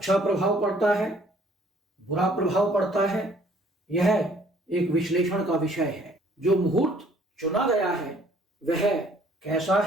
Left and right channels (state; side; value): normal; both; correlation 0.59